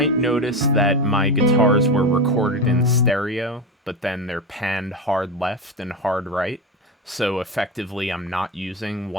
notice that my guitars were recorded in stereo, but then they're panned hard left and hard right. So effectively, I'm not using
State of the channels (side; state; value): both; normal; correlation 0.20